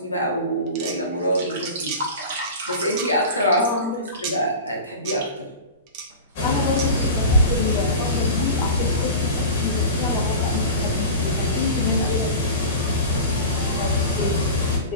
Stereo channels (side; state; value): both; inverted; correlation -0.32